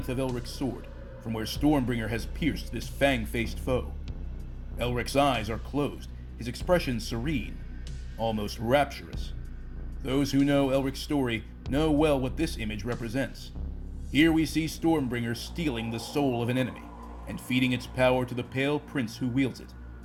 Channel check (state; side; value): identical; both; correlation 1.00